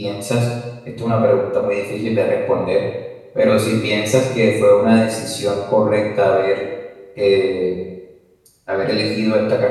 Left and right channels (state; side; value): identical; both; correlation 1.00